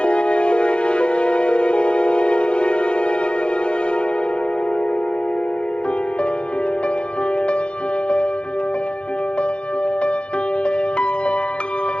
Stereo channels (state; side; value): late; right; 0.056 ms